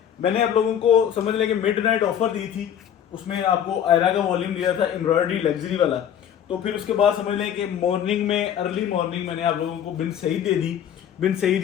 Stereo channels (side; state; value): right; quieter; 9.4 dB